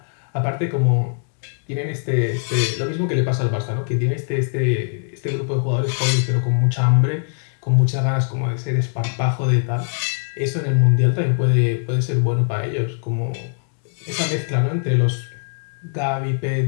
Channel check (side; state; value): right; silent; digital silence